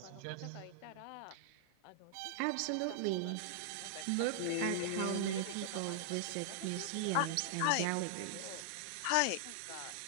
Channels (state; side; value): different; both; correlation -0.01